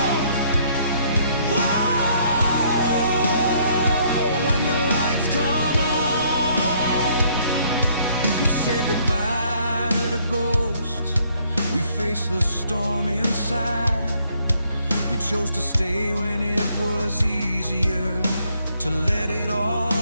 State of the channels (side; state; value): both; inverted; correlation -0.66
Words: Whoa, when the lights come on, we say goodbye to the ghosts, we face the storm inside. We chose to stay when it was easier to let it all